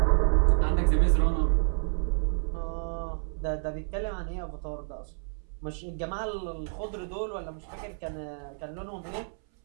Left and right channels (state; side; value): silent; left; 59 dB below the other